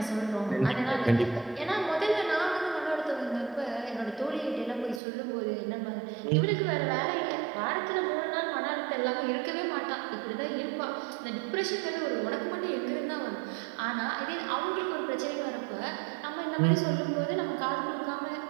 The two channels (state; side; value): drops out; left; at 5.0 s